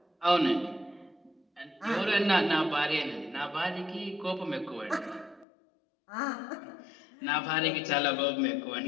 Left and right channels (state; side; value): drops out; right; at 5.5 s